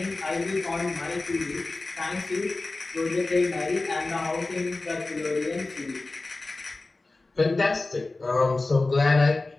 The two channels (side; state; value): right; quieter; 3.3 dB